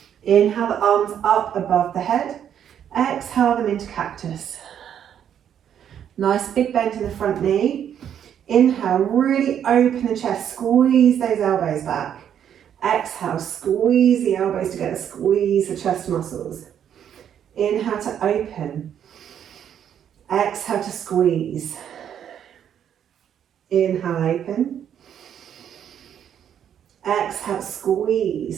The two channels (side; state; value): left; quieter; 9.2 dB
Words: Inhale the arms up above the head. Exhale them into cactus. Nice big bend in the front knee. Inhale, really open the chest, squeeze those elbows back. Exhale, squeeze the elbows together, squeeze the chest muscles. Inhale to open. Exhale to squeeze. Inhale, open. Exhale,